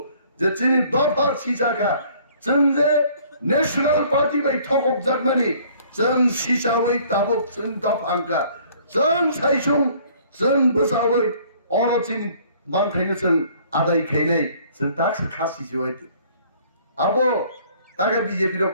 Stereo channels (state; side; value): inverted; both; correlation -0.57